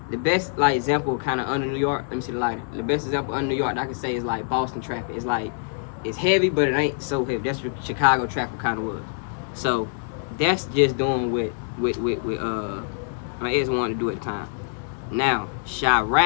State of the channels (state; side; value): silent; right; digital silence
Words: the best like example kind of under New York. Let me see the lighter. The best example under New York that I can say is like Boston traffic. It's like it's heavy, but it ain't so heavy. That's what Chicago traffic kind of was. So that's just doing with my ex wanted to do at the time. Now,